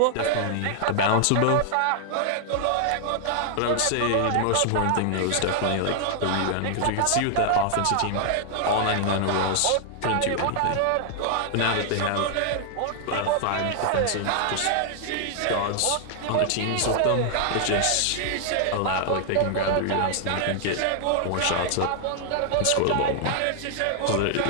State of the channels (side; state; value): both; different; correlation 0.00